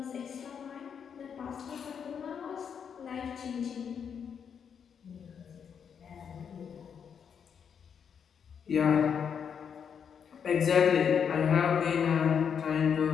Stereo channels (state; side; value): quieter; right; 7.3 dB